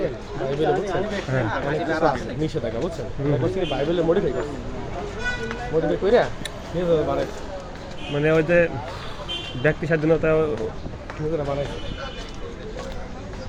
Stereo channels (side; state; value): both; identical; correlation 1.00